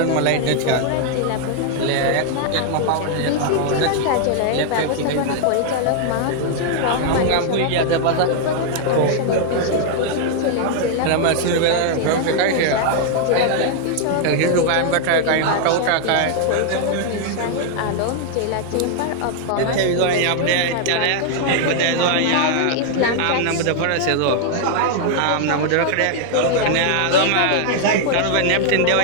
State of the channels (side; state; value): both; different; correlation 0.00